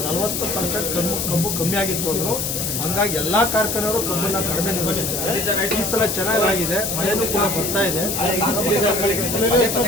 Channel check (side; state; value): left; noise; hiss, 2 dB below the sound